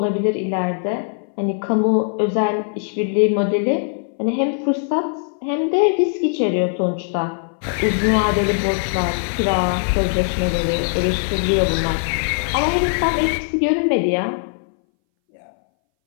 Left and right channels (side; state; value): right; silent; 62 dB below the other